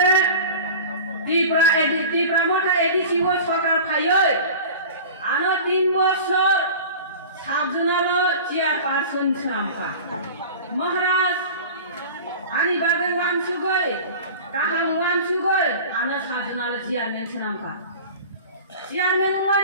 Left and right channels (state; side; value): inverted; both; correlation -0.37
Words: तिप्रा मथा एडिसिबो सरकार फायो आनो 3 बছর साबजुनालो चेयारपारसन सामखा महाराज आनि बागै वानसुगै गाहाम वानसुगै आनो साबजुनालो चेयारमेन सामखा चेयारमेन